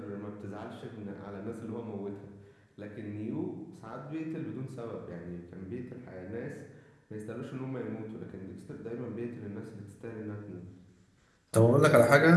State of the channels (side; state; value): both; identical; correlation 1.00